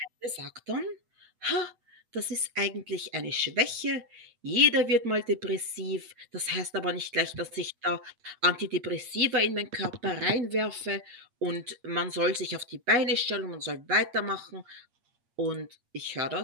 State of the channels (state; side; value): late; left; 8.4 ms